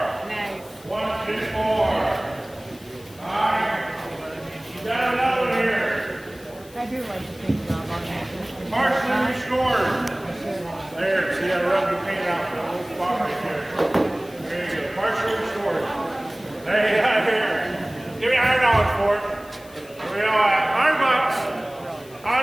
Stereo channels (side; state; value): left; noise; hiss, 23 dB below the sound